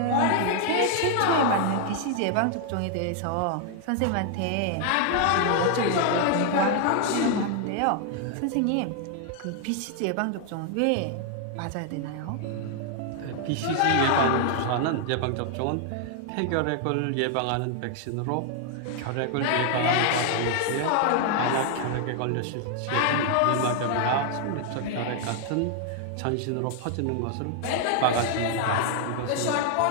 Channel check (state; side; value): different; both; correlation 0.00